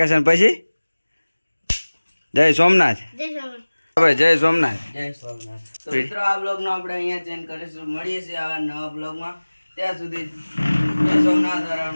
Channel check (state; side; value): inverted; both; correlation -1.00